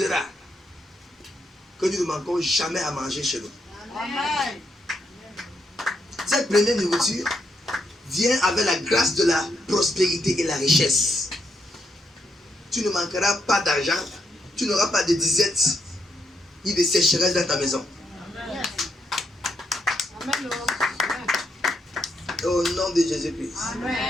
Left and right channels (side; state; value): both; normal; correlation 0.79